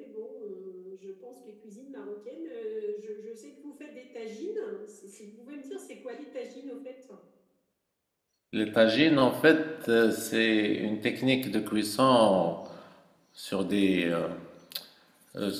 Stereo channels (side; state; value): both; identical; correlation 1.00